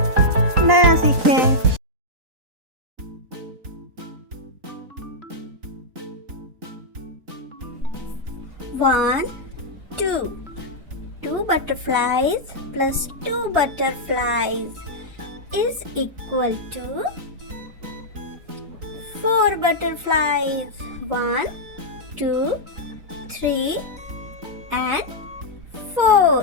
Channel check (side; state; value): left; late; 3.9 ms